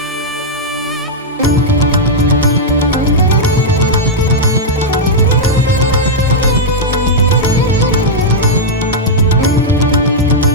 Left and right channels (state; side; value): normal; both; correlation -0.05